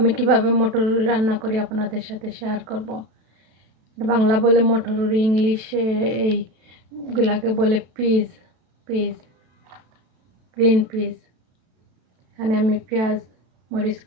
কিভাবে মটরুনি রান্না করি আপনাদের সাথে শেয়ার করব। বাংলা বলে মটরুনি, ইংলিশে এইগুলাকে বলে পিজ, গ্রিন পিজ। এখানে আমি পেঁয়াজ মরিচ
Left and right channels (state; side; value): late; left; 32 ms